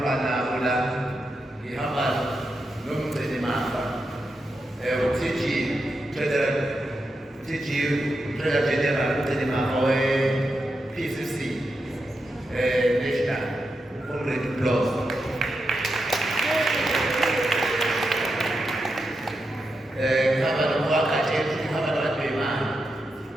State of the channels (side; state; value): both; normal; correlation 0.87